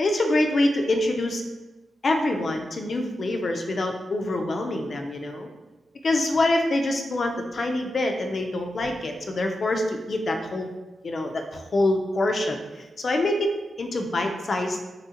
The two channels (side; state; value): both; normal; correlation 0.89